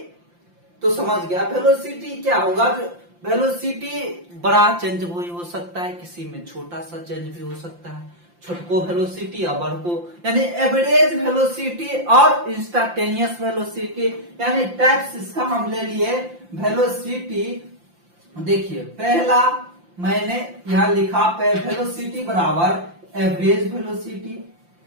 तो समझ गया, वेलोसिटी क्या होगा, वेलोसिटी बड़ा चेंज भी हो सकता है, किसी में छोटा सा चेंज भी हो सकता है, छोटको वेलोसिटी या बड़को, यानी एवरेज वेलोसिटी और इंस्टांटेनियस वेलोसिटी, यानी टाइप्स इसका हम ले लिए वेलोसिटी। देखिए पहला मैंने यहां लिखा वेलोसिटी बराबर एवरेज वेलोसिटी,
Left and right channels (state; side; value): late; left; 5.8 ms